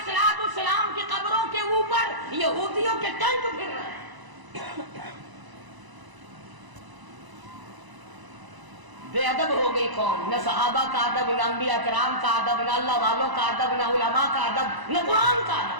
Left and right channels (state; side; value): late; left; 1.0 ms